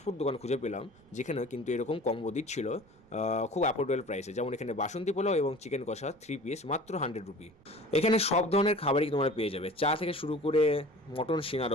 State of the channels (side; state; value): right; noise; rumble, 29 dB below the sound